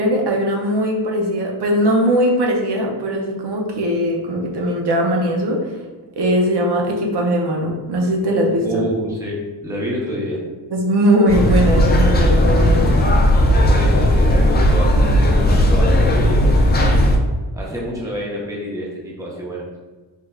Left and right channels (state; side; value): normal; both; correlation 0.50